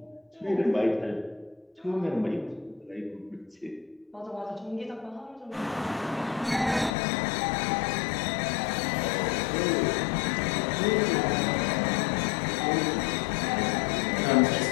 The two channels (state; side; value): drops out; right; at 6.9 s